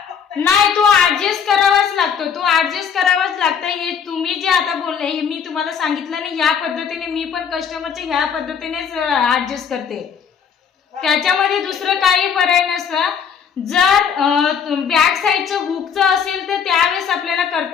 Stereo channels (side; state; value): right; quieter; 7.2 dB